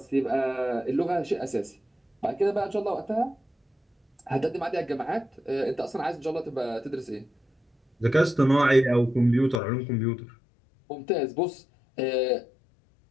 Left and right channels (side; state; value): right; drops out; at 9.6 s